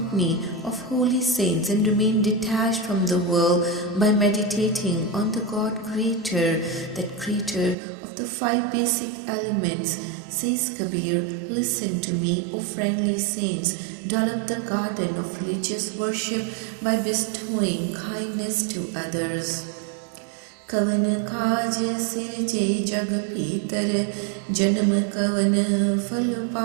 of holy saints and remain detached from the world by meditating on the God Creator, that Creator of the 5 basic elements. Says Kabir, listen to me, O friendly saints, develop the garden of religious worship by bestowing kindness to others. कवन काज सिरजे जग भीतर, जन्म कवन फल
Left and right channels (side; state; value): left; drops out; at 7.8 s